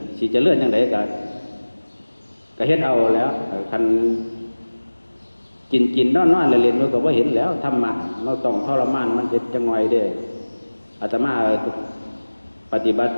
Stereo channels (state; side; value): inverted; both; correlation -1.00